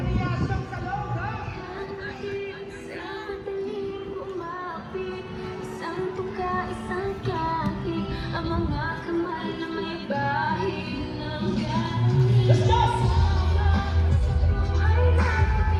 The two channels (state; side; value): identical; both; correlation 1.00